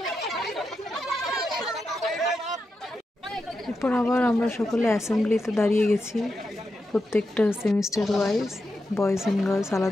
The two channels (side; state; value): both; normal; correlation 0.87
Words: এরপর আবার আমরা সকলে অ্যাসেম্বলিতে দাঁড়িয়ে গেছি, প্রত্যেকটা semester wise, boys and girls